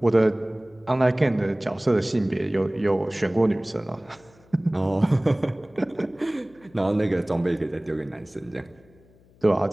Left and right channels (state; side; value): noise; left; hum, 29 dB below the sound